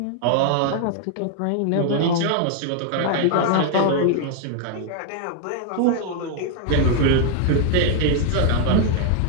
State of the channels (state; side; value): different; both; correlation 0.00